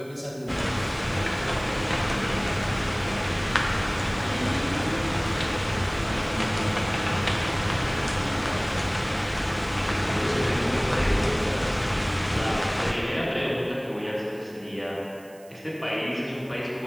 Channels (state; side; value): noise; right; hiss, 25 dB below the sound